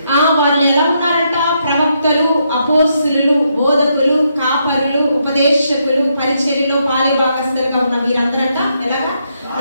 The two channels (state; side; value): inverted; both; correlation -0.78